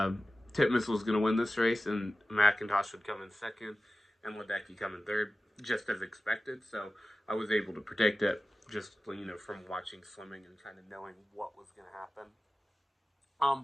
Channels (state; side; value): normal; both; correlation 0.95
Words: was going to win this race, and McIntosh would come in second, and Ledecky come in third, just as expected. So I was able to predict it just from watching swimming and kind of knowing what was going to happen.